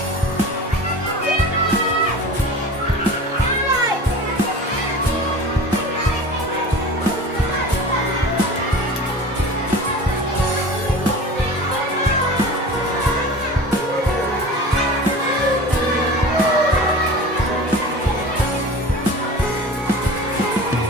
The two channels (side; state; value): both; normal; correlation 0.37